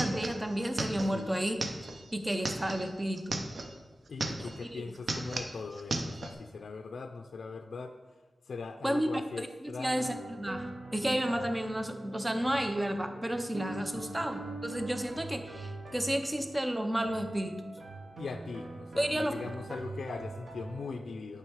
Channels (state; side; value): normal; both; correlation 0.95